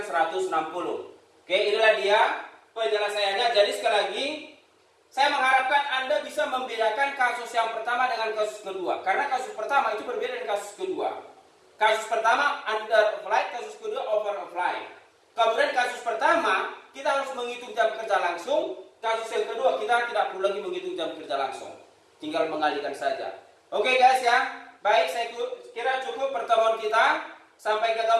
160. Oke, inilah dia penjelasannya. Jadi sekali lagi saya mengharapkan Anda bisa membedakan kasus yang pertama dengan kasus kedua. Karena kasus pertama itu berbeda dengan kasus kedua. Kasus pertama under apply, kasus kedua over apply. Kemudian kasus pertama kita harus menghitung jam kerja langsung. Kasus yang kedua, kita tidak perlu lagi menghitung jam kerja langsung. Tinggal mengalihkan saja. Oke guys ya. Baik, saya kira cukup pertemuan kita. Sampai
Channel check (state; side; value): identical; both; correlation 1.00